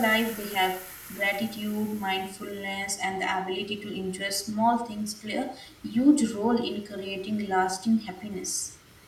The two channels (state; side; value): identical; both; correlation 1.00